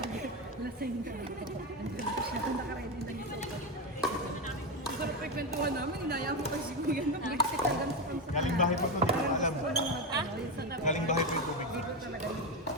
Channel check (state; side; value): normal; both; correlation 0.13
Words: lasing ka. Andun ko siya, doon nakaready na dito. Ang sarap pa ikwentuhan namin, inaya mo kasi kuya. Galing bahay pa ito, hindi ko alam. Galing bahay pa yung tubig. Hindi ko talaga